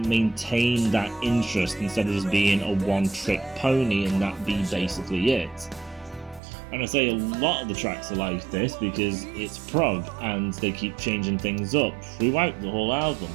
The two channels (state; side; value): drops out; left; at 6.4 s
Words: maintain that interest instead of just being a one-trick pony and that be basically it. And I say a lot of the tracks are like this because it's prog and they keep changing things up throughout the whole album.